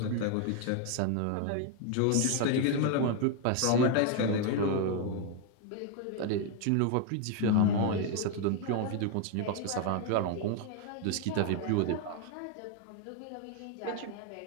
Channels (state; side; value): different; both; correlation 0.01